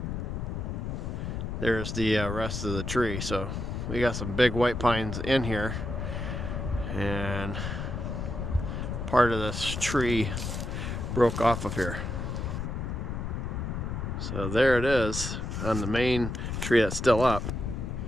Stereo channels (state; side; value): noise; left; rumble, 4 dB below the sound